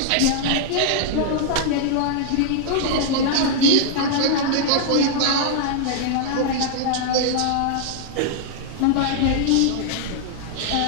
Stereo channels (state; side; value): different; both; correlation -0.01